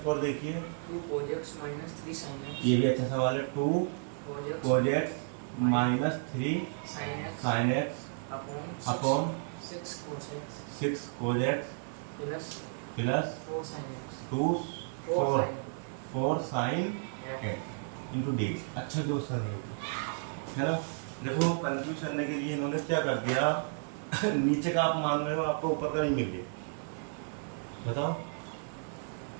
देखिए। 2 cos x minus 3 sin x। ये भी अच्छा सवाल है। 2 cos x minus 3 sin x upon 6 cos x 6 cos x plus plus 4 sin x 2 4 4 sin x into D. अच्छा question है ना। देखो कंफ्यूज करने के लिए इन्होंने क्या कर दिया नीचे का आप मान रहे हो, आपको ऊपर का नहीं मिल गया। बताओ,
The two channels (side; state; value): left; silent; 56 dB below the other